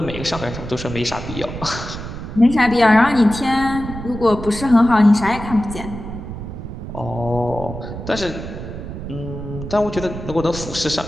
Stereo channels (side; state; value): right; noise; rumble, 9 dB below the sound